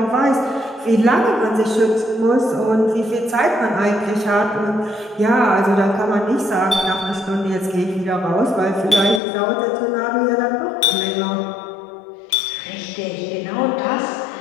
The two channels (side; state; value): right; drops out; at 9.2 s